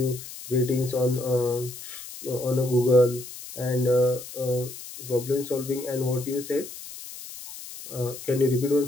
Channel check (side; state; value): left; noise; hiss, 13 dB below the sound